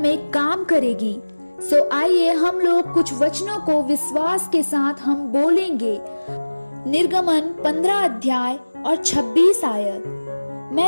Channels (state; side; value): inverted; both; correlation -1.00